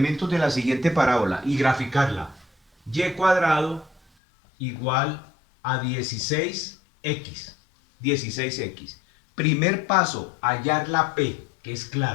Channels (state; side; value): drops out; right; at 4.0 s